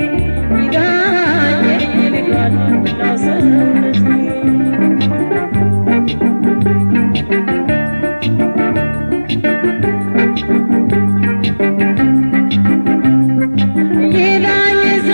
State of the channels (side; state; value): both; inverted; correlation -1.00